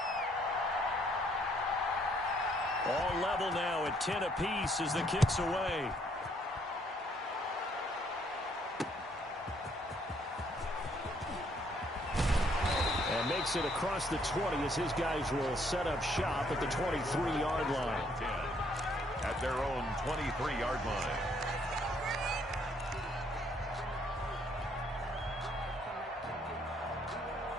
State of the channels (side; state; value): both; normal; correlation 0.68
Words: All level now at 10 apiece as the kick's away. And makes it across the 20 as his guys will set up shop at the 23-yard line. 10. At their own 23-yard line.